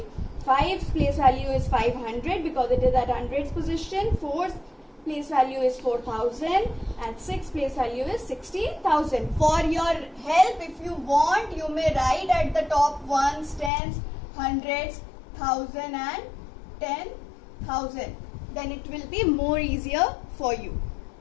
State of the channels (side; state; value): right; drops out; at 13.7 s